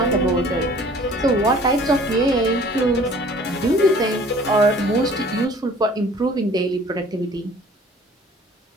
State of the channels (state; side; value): normal; both; correlation 0.51